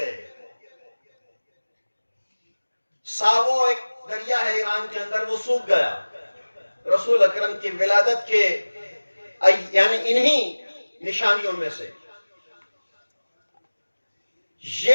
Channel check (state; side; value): inverted; both; correlation -1.00